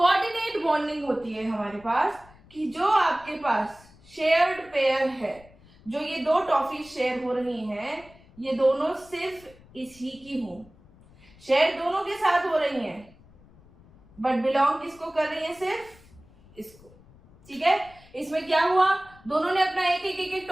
बॉन्डिंग होती है हमारे पास कि जो आपके पास शेयर्ड पेयर है, जो ये 2 टॉफी शेयर हो रही हैं, ये दोनों सिर्फ इसी की हो, शेयर दोनों के साथ हो रही हैं, बट बिलोंग किसको कर रही है, सिर्फ इसको। ठीक है, इसमें क्या हुआ, दोनों ने अपना एक एक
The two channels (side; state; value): left; noise; rumble, 25 dB below the sound